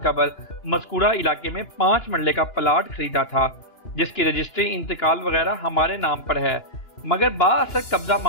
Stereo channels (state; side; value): late; right; 2.9 ms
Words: قبل مذکورہ علاقے میں 5 مرلے کا پلاٹ خریدا تھا جس کی رجسٹری انتقال وغیرہ ہمارے نام پر ہے، مگر بااثر قبضہ